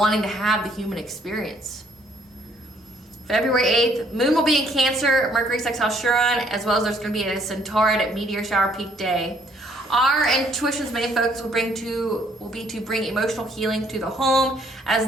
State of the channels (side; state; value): both; normal; correlation 0.65